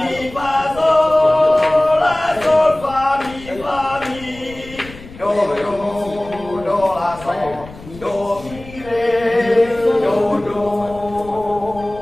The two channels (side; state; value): left; noise; rumble, 18 dB below the sound